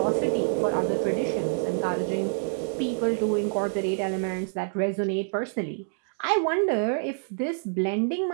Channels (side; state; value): left; silent; digital silence